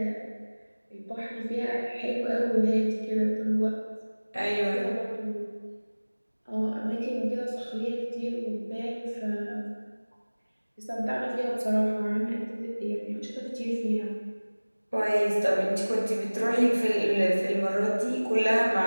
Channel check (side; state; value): both; inverted; correlation -1.00